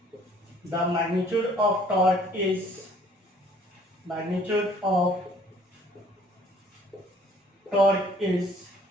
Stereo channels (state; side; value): normal; both; correlation 0.57